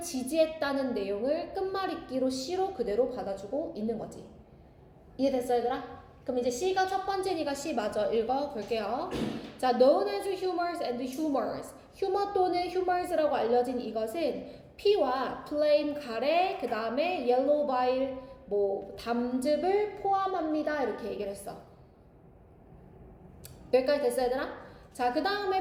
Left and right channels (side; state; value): both; identical; correlation 1.00